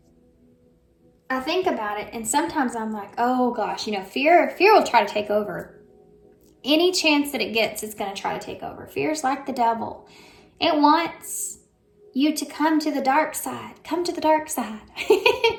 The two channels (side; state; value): both; identical; correlation 1.00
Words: I think about it, and sometimes I'm like, oh gosh, you know, fear will try to take over. Any chance that it gets, it's going to try to take over. Fear's like the devil. It wants you to come to the dark side. Come to the dark side.